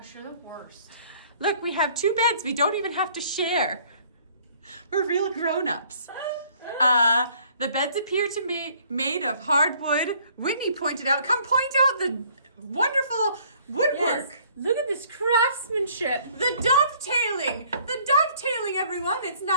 you're the worst. Look, we have 2 beds. We don't even have to share. We're real grown-ups. The beds appear to be made of hardwood. Whitney pointed out, come point out the wonderful woodwork. Yes. Look at this craftsmanship. The dovetailing, everyone. It's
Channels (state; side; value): inverted; both; correlation -0.59